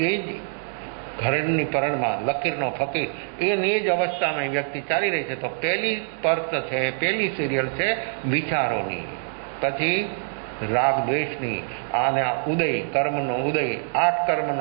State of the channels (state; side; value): silent; left; digital silence